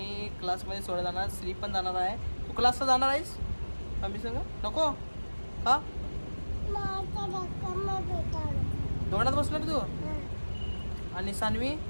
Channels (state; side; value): inverted; both; correlation -1.00